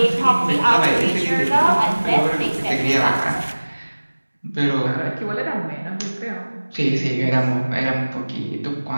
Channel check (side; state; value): both; inverted; correlation -1.00